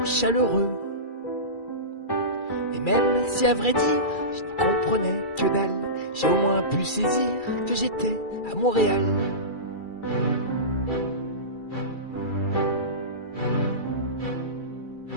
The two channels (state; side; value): late; right; 2.3 ms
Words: chaleureux. Et même si à vrai dire je n'y comprenais que dalle, j'ai au moins pu saisir que j'étais à Montréal.